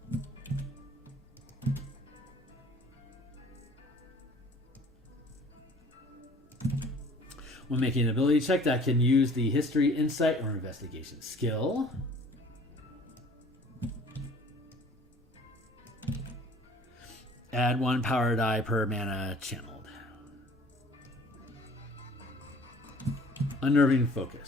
when making an ability check that can use the history, insight, or investigation skill. Add 1 power die per mana channeled. Unnerving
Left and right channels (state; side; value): normal; both; correlation 0.51